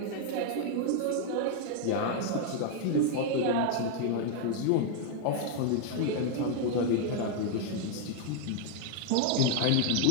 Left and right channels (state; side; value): different; both; correlation 0.00